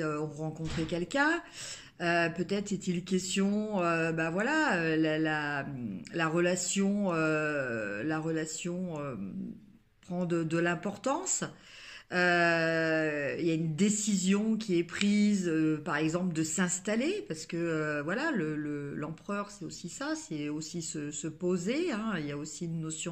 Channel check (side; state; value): both; identical; correlation 1.00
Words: ont rencontré quelqu'un, peut-être est-il question, bah voilà, la relation prend de l'importance. Il y a une décision qui est prise, par exemple, de s'installer, parce que voilà, l'empereur, c'est aussi ça, c'est aussi se poser, hein, il y a aussi une